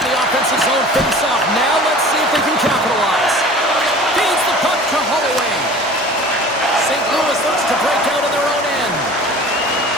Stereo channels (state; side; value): normal; both; correlation 0.43